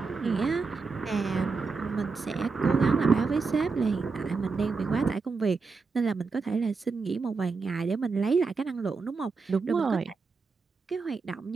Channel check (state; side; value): quieter; left; 4.5 dB